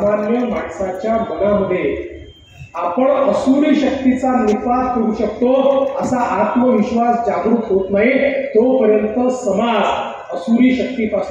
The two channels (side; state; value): both; identical; correlation 1.00